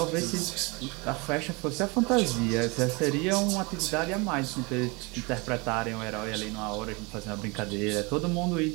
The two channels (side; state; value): left; quieter; 27.5 dB